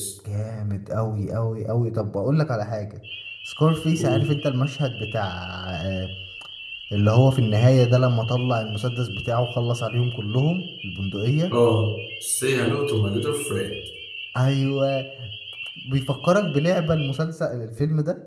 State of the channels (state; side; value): identical; both; correlation 1.00